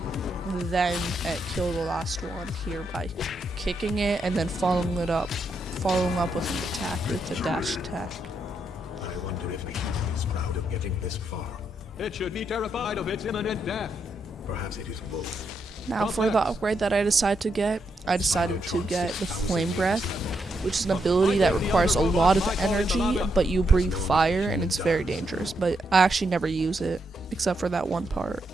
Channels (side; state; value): both; normal; correlation 0.80